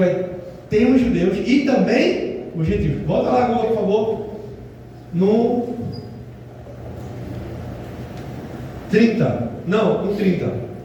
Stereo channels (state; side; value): identical; both; correlation 1.00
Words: ter os judeus e também o gentil. Volta lá agora, por favor. No 30. Não, no 30.